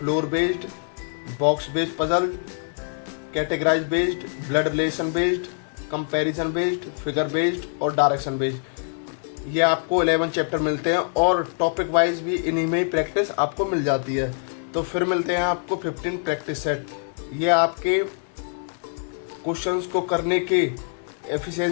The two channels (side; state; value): right; silent; 62 dB below the other